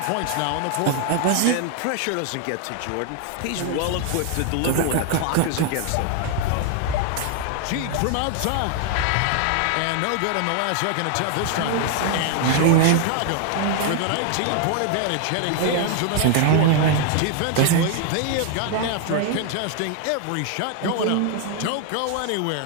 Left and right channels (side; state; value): both; different; correlation 0.00